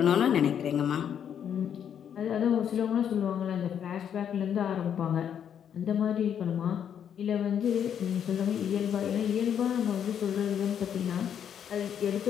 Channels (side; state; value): right; quieter; 8.7 dB